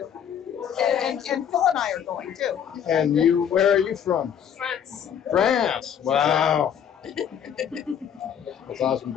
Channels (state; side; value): quieter; right; 8.7 dB